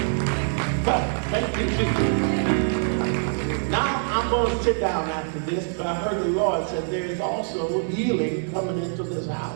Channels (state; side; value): silent; left; digital silence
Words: sit down after this, but I heard the Lord said there is also healing coming into this